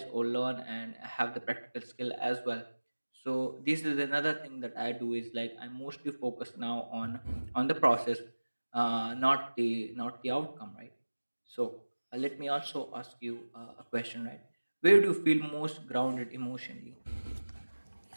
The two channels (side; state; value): both; inverted; correlation -1.00